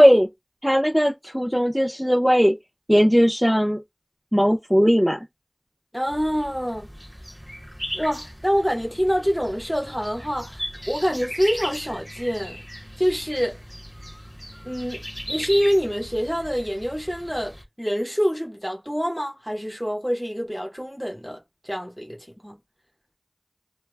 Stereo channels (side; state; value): both; identical; correlation 1.00